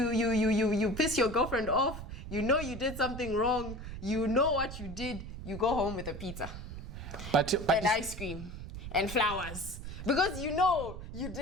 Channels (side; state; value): right; noise; rumble, 9 dB below the sound